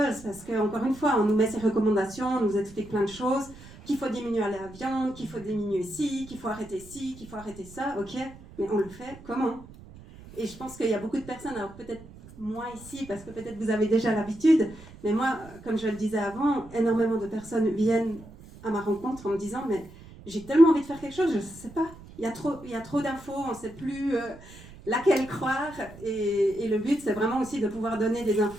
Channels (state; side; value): noise; right; rumble, 19 dB below the sound